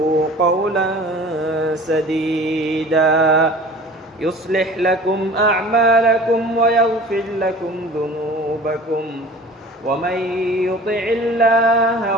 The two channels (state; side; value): normal; both; correlation 0.43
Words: قولا سديدا يصلح لكم أعمالكم ويغفر لكم ذنوبكم ومن يطع الله